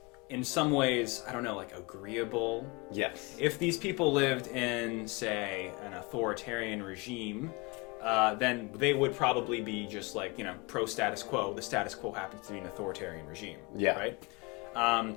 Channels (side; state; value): right; quieter; 26.7 dB